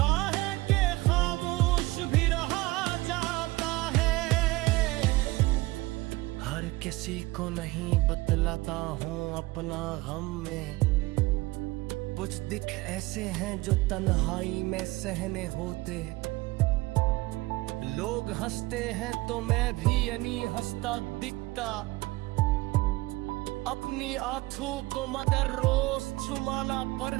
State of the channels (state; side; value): quieter; left; 20.7 dB